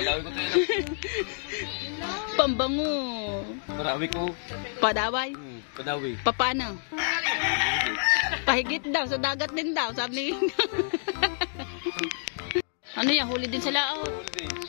ko to. Pambango. Padawi ko. Padaway? Padawi. Paano? Pahigit daw, sa dagat din daw, sabi ni Ano yan, huli din sa laot?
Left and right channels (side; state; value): right; silent; digital silence